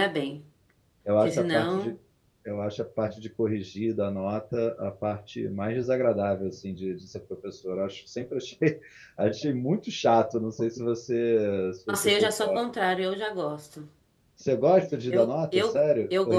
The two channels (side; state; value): both; identical; correlation 1.00